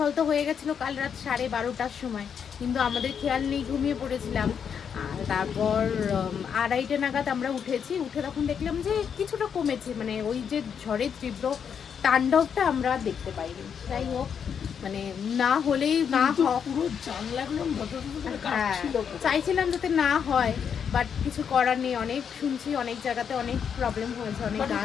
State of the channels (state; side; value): quieter; right; 7.4 dB